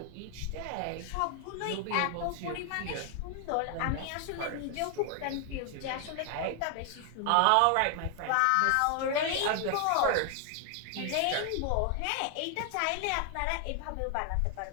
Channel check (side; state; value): both; different; correlation 0.00